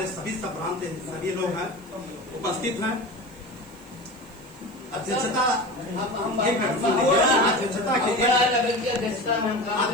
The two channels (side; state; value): left; noise; hiss, 29 dB below the sound